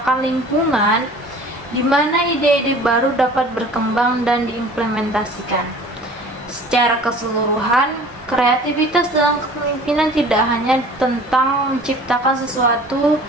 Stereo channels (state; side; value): normal; both; correlation 0.46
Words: lingkungan di mana ide-ide baru dapat berkembang dan diimplementasikan. Secara keseluruhan, kreativitas dalam kepemimpinan tidak hanya tentang menciptakan sesuatu